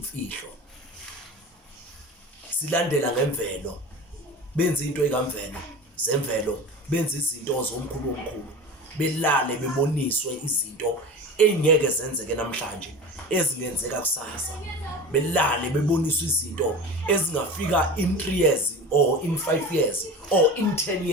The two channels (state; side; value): normal; both; correlation 0.33